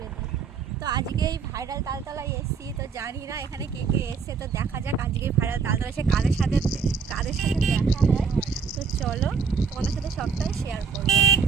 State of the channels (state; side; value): quieter; left; 5.7 dB